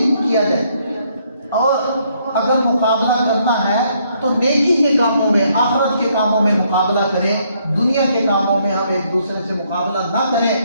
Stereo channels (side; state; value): both; inverted; correlation -0.70